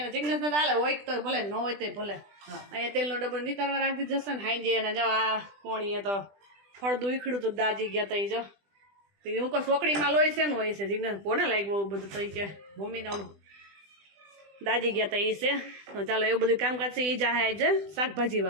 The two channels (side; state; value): left; late; 20 ms